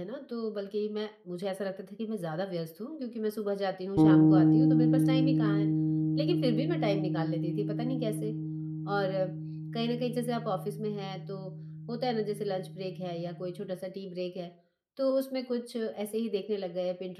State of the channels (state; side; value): identical; both; correlation 1.00